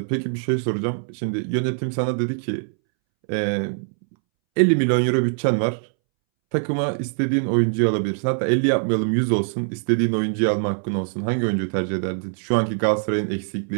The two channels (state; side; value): silent; left; 64 dB below the other